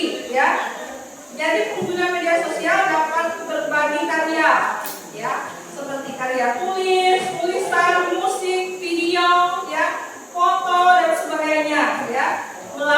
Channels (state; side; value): identical; both; correlation 1.00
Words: ya. Jadi pengguna media sosial dapat berbagi karya, ya, seperti karya tulis, tulisan, musik, video, ya, foto dan sebagainya, ya,